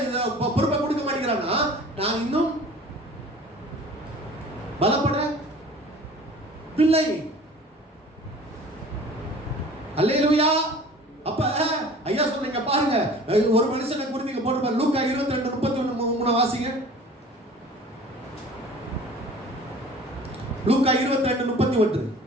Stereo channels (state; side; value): normal; both; correlation 0.45